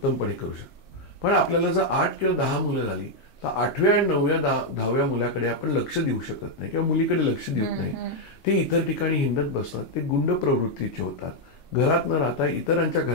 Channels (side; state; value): right; late; 3.1 ms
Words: करू शकतो. पण आपल्याला जर 8 किंवा 10 मुलं झाली तर 8व्या आणि 9व्या 10व्या मुलाकडे आपण लक्ष देऊ शकत नाही किंवा मुलीकडे लक्ष देत नाही. ते इतर ठिकाणी हिंडत बसतात, ते गुंड प्रवृत्तीचे होतात, घरात न राहता इतरांच्या